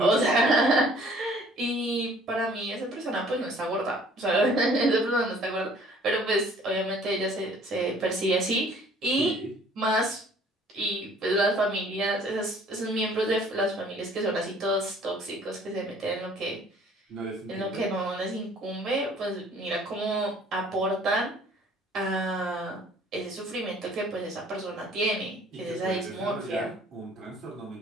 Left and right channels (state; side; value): normal; both; correlation 0.55